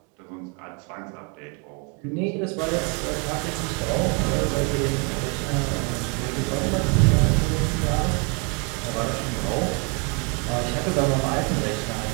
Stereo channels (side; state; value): left; quieter; 33.6 dB